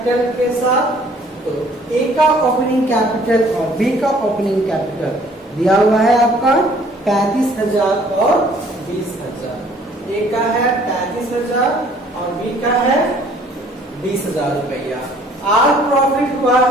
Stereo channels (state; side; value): normal; both; correlation 0.58